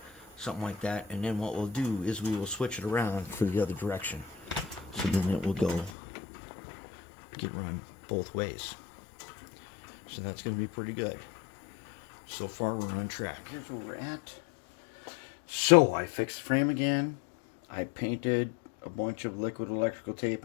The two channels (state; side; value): drops out; right; at 5.9 s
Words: something like that. And then what we'll do is we will switch it around for the other direction. So then it will get run both ways. So that's going to be pretty good. So far we're on track. Here's where we're at. So I fixed the frame again. I painted a bunch of liquid electrical